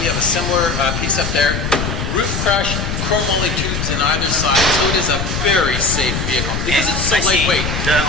we have a similar piece up there. Roof crush, chrome moly tubes in either side, so it is a very safe vehicle because it's so lightweight.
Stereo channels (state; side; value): noise; left; rumble, 3 dB below the sound